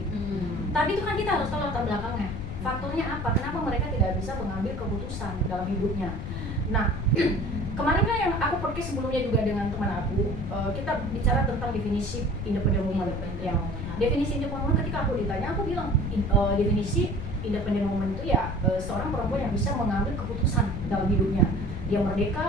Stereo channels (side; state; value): left; noise; rumble, 6 dB below the sound